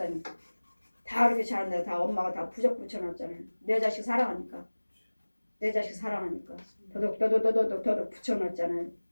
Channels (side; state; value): both; inverted; correlation -1.00